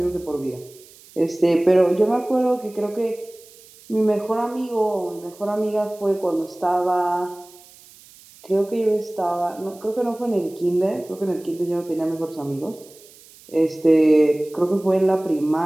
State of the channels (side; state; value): right; noise; hiss, 24 dB below the sound